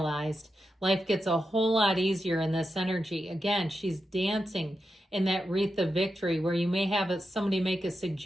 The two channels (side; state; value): both; normal; correlation 0.88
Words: Life gets a whole lot easier in this energy. Again, she's dancing in that wreath of victory where you may have somebody make a